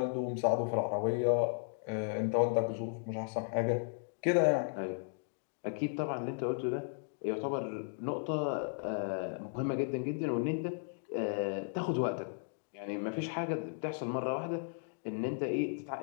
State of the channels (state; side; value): silent; right; digital silence